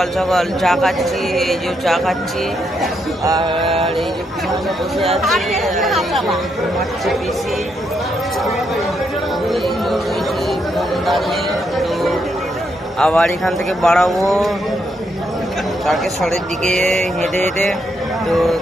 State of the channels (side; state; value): both; normal; correlation 0.78